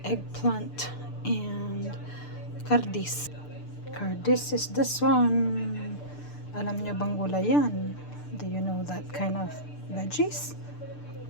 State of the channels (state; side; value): late; right; 6.8 ms